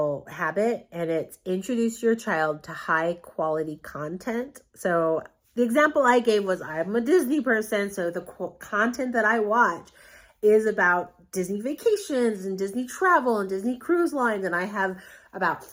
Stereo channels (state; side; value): identical; both; correlation 1.00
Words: habit, and it's introduce your child to high quality content. So the example I gave was, I'm a Disney person, so the content that I watch is about Disney vacations and Disney travel and Disney cruise lines. And I have about